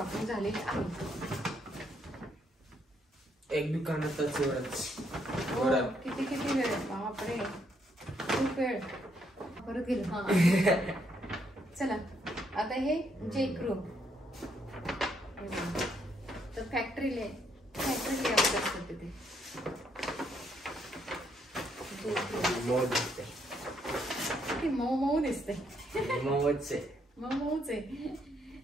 झालेली आहे. एक दुकानातच एवढंच. किती वेळ? बापरे, खूप वेळ. परत गेलो. हा चला आता हे जेक्रू. तर फॅक्टरी लेआउट असतं तिथे. किती मऊ दिसते. मऊच आहे.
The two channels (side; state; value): both; normal; correlation 0.73